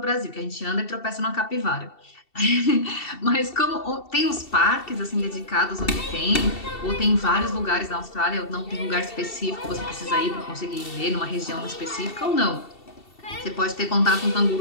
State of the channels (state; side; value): late; right; 2.7 ms